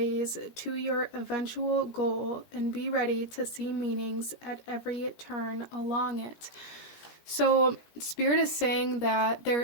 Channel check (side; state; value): right; late; 17 ms